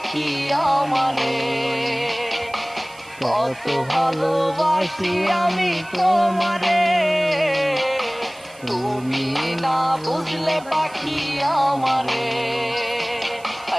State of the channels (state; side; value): noise; right; hiss, 23 dB below the sound